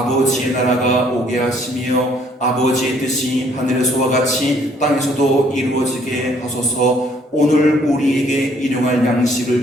나라가 오게 하시며 아버지의 뜻이 하늘에서와 같이 땅에서도 이루어지게 하소서. 오늘 우리에게 일용할 양식을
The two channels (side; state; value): both; normal; correlation 0.63